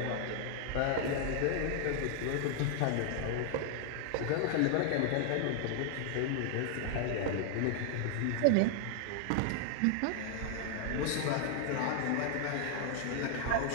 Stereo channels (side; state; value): both; different; correlation 0.00